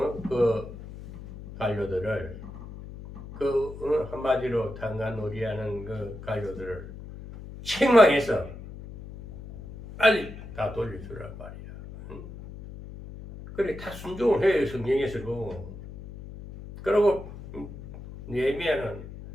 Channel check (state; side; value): noise; left; hum, 13 dB below the sound